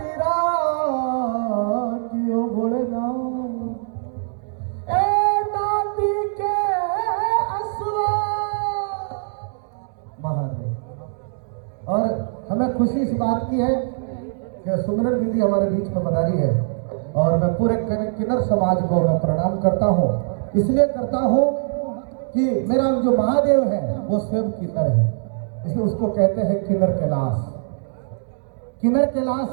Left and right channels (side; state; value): left; silent; 64 dB below the other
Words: रातियों बोलना, ए नाती के असुआ महादेव। और हमें खुशी इस बात की है कि सुमिरन दीदी हमारे बीच में पधारी है और मैं पूरे किन्नर समाज को मैं प्रणाम करता हूँ। इसलिए करता हूँ कि मेरा जो महादेव है वो स्वयं किन्नर है, इसलिए उसको कहते हैं किन्नर कैलाश। किन्नर कैलाश